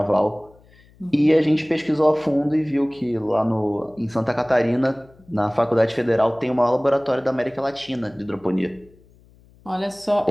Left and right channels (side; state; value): left; noise; hum, 28 dB below the sound